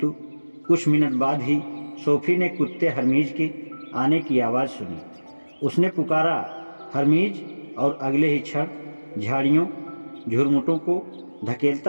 कुछ मिनट बाद ही सोफी ने कुत्ते हरमीज के आने की आवाज़ सुनी। उसने पुकारा, हरमीज, और अगले ही क्षण झाड़ियों झुरमुटों को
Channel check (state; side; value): inverted; both; correlation -1.00